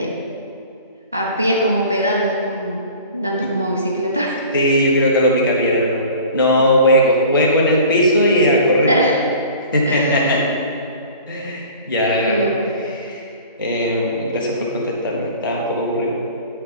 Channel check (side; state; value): both; inverted; correlation -0.43